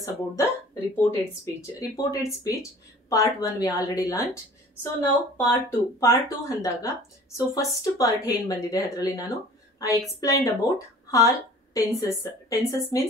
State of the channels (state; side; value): normal; both; correlation 0.46